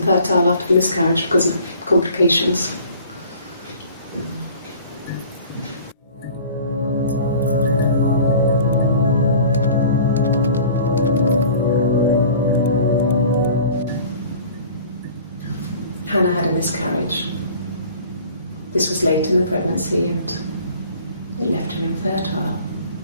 after the miscarriage because of complications. Hannah had a miscarriage. This was late in the pregnancy and it left her infertile.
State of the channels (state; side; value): inverted; both; correlation -0.47